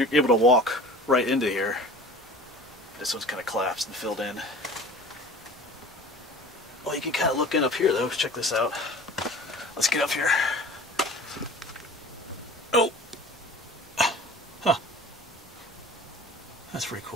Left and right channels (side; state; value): both; normal; correlation 0.42